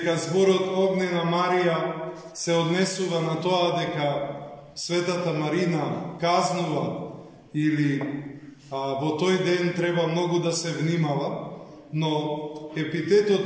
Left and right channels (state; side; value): identical; both; correlation 1.00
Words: зборот Огнена Марија се однесува на тоа дека Светата Марина казнува или во тој ден треба многу да се внимава, но